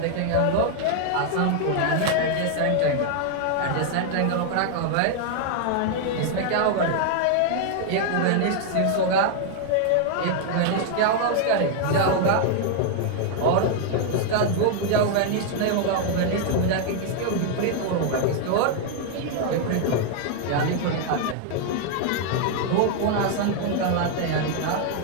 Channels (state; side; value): different; both; correlation 0.00